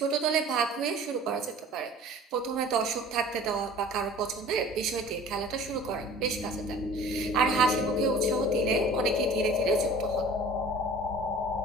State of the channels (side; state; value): both; normal; correlation 0.45